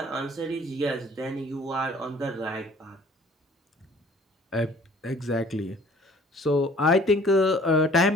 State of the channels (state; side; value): normal; both; correlation 0.53